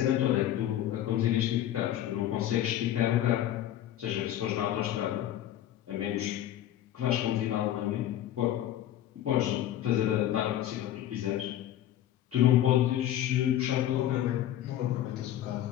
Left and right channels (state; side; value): quieter; right; 12.2 dB